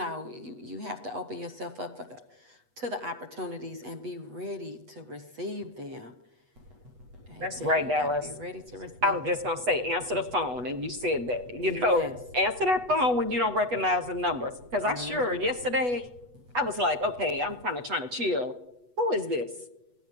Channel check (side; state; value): left; late; 8.1 ms